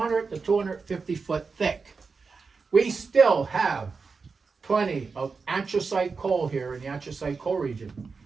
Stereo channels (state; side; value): quieter; left; 4.8 dB